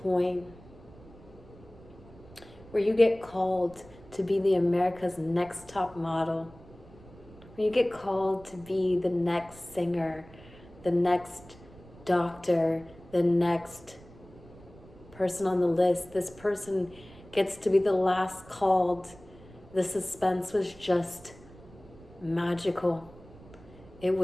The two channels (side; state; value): right; noise; rumble, 21 dB below the sound